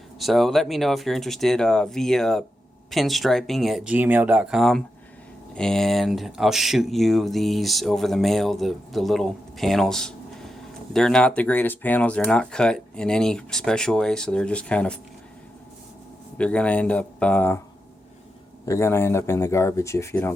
So let me know if you're interested via pinstriping@gmail.com, and I'll shoot you these over the mail, the little panels. They're not the greatest panels. They're not cut in any special way, so they're just kind of, they're gonna end up in the garbage if you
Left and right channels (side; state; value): both; normal; correlation 0.87